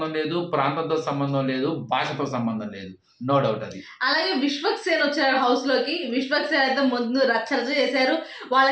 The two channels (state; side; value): identical; both; correlation 1.00